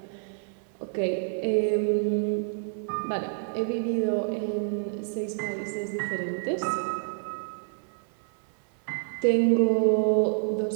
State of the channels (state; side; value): silent; left; 59 dB below the other